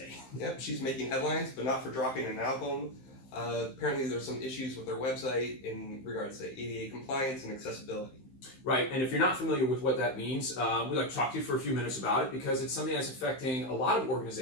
Yep, she's making headlines, but not for dropping an album. Apparently there's some issues with their website in regards to ADA compliance and accessibility. Right, and if you're not familiar with what that means, we'd like to talk to you for a few minutes about it because it's something that's affecting a lot of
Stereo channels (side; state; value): right; late; 15 ms